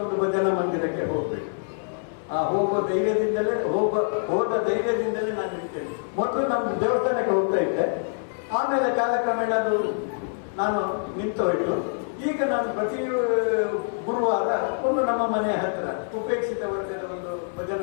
ಒಂದು ಭಜನಾ ಮಂದಿರಕ್ಕೆ ಹೋಗ್ಬೇಕು. ಆ ಹೋದ ಧೈರ್ಯದಿಂದಲೇ ನಾನು ನಿಲ್ತೇನೆ. ಮೊದಲು ನಮ್ಮ ದೇವಸ್ಥಾನಕ್ಕೆ ಹೋಗ್ತಾ ಇದ್ದೆ, ಆಮೇಲೆ ಕಾಲಕ್ರಮೇಣ ಅದು ನಾನು ನಿಂತು ಹೋಯ್ತು. ಈಗ ನಾನು ಪ್ರತಿ ಗುರುವಾರ ಒಂದು ನಮ್ಮ ಮನೆಯ ಹತ್ರ ಉಪೇಕ್ಷಿತ ವರ್ಗದ ಒಂದು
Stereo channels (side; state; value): right; silent; 61 dB below the other